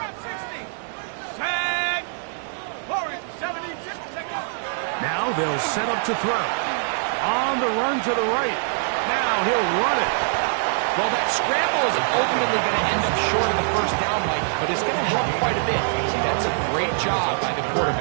60. Tag. Forward, 76. Now they'll set up to throw. On the run to the right. Now he'll run it. Well, that scramble is ultimately going to end up short of the first down, Mike, but it's going to help quite a bit. That's a great job by the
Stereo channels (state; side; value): silent; left; 63 dB below the other